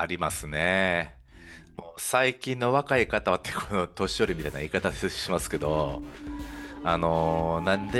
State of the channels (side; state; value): both; identical; correlation 1.00